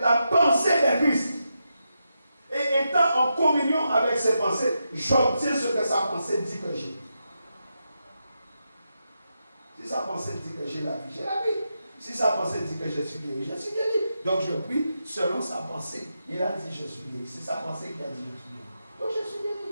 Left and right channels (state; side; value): inverted; both; correlation -0.86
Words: pensée de Christ. Et étant en communion avec ses pensées, j'obtiens ce que sa pensée dit que j'ai. Si sa pensée dit que j'ai la vie, j'ai la vie. Si sa pensée dit que je suis guéri, je suis guéri. Donc je prie selon sa pensée. Il a dit je suis guéri. C'est sa pensée qui a dit je suis guéri. Donc je suis guéri.